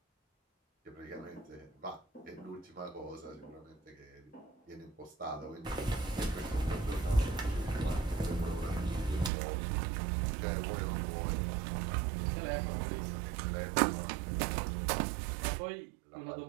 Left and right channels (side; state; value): left; drops out; at 9.3 s